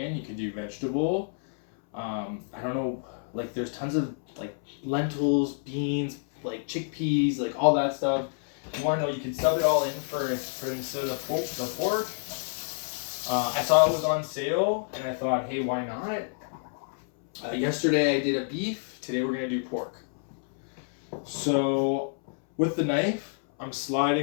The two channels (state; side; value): silent; right; 59 dB below the other